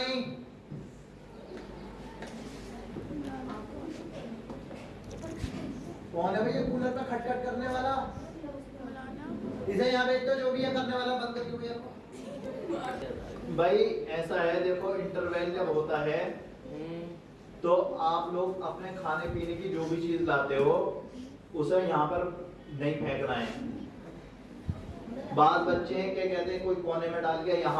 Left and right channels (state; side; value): identical; both; correlation 1.00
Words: کون ہے بھائی یہ کولر پہ کھٹ کھٹ کرنے والا اسے یہاں بیچ تو جو بھی ہے کرنے والا بند کر دیا بھائی ایسا ہے دیکھو انٹرویل جب ہوتا ہے تو آپ لوگ اپنے کھانے پینے کی جو بھی چیز لاتے ہو اسے یہاں پر نہیں پھینکنا ہے بعض بچے ہیں کہ کہتے ہیں کوئی کونے میں ڈال گیا